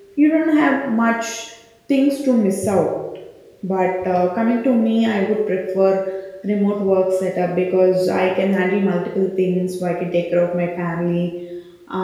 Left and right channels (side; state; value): both; identical; correlation 1.00